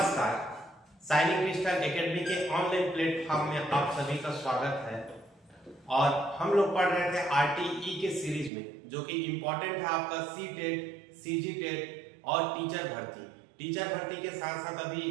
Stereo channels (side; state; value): left; drops out; at 8.5 s